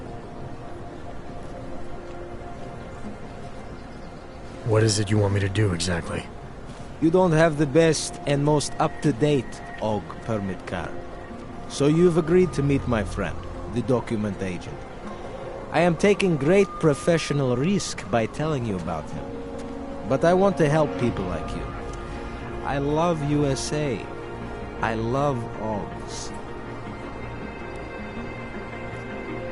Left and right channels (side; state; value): both; identical; correlation 1.00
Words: What is it you want me to do exactly? You don't have the best and most up-to-date AvG permit card. So you've agreed to meet my friend, the document agent. I am taking great professional risk by telling you about him. But I want to help people like you. I love USA. I love AvGs.